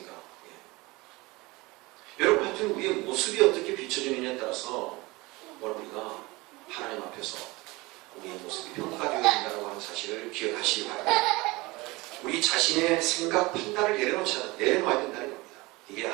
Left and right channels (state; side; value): quieter; left; 22.7 dB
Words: 여러분, 하여튼 우리의 모습이 어떻게 비춰지느냐에 따라서 우리가 하나님 앞에서 우리의 모습이 평가되어야 된다고 하는 사실을 기억하시기 바랍니다. 우리 자신의 생각, 판단을 내려놓아야 된다는 겁니다. 이게